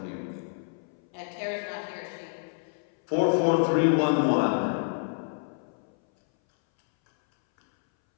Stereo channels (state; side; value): silent; right; 59 dB below the other